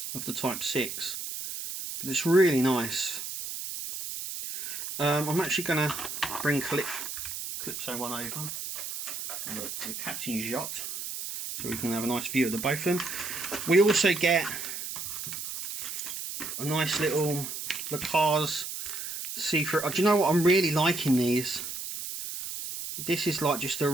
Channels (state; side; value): noise; right; hiss, 6 dB below the sound